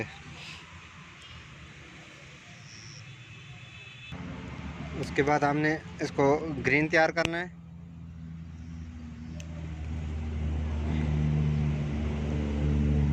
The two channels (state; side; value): identical; both; correlation 1.00